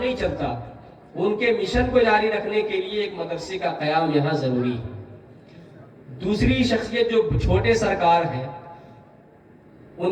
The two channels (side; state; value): both; identical; correlation 1.00